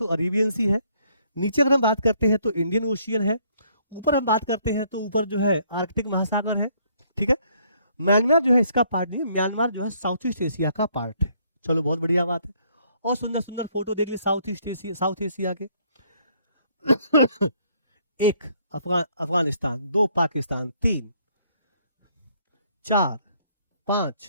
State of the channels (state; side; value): inverted; both; correlation -0.66